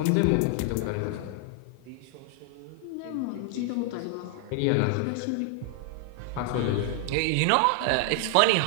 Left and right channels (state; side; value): different; both; correlation 0.00